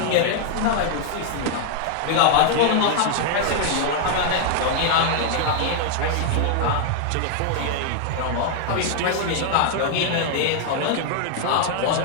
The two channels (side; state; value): both; different; correlation 0.00